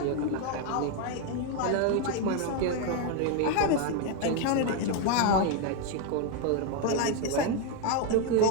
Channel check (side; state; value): both; different; correlation 0.01